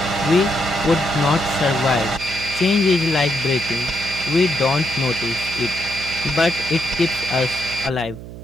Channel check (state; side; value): noise; right; hum, 13 dB below the sound